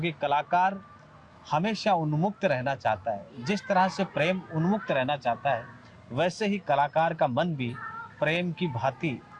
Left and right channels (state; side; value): identical; both; correlation 1.00